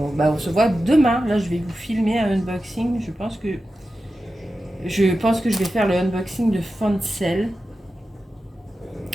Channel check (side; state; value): both; normal; correlation 0.92